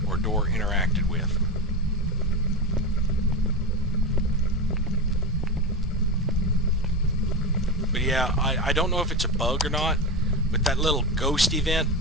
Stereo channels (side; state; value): both; normal; correlation 0.19